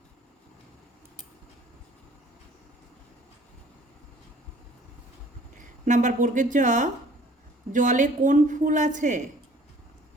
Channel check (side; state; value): both; normal; correlation 0.54